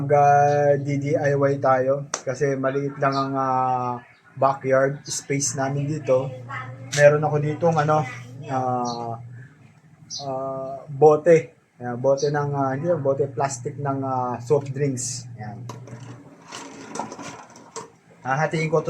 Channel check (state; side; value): identical; both; correlation 1.00